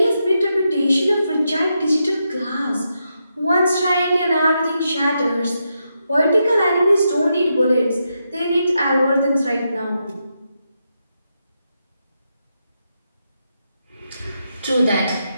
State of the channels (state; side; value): inverted; both; correlation -0.84